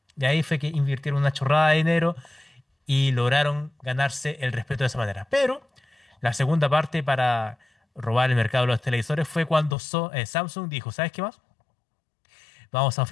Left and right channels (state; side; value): drops out; right; at 9.8 s